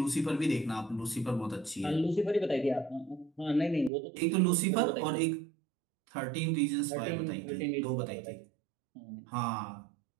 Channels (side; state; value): left; drops out; at 3.9 s